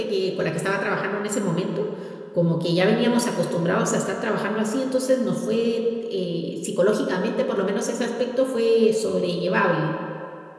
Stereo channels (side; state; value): both; identical; correlation 1.00